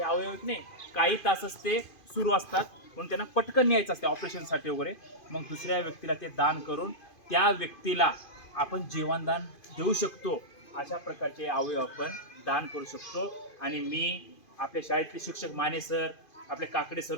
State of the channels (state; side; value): late; right; 2.5 ms